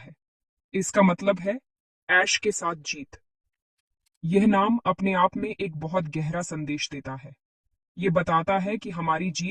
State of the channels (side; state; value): both; identical; correlation 1.00